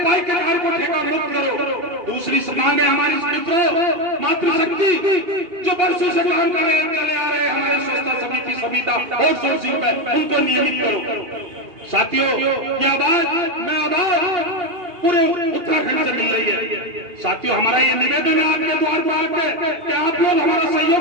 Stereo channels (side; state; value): left; late; 2.8 ms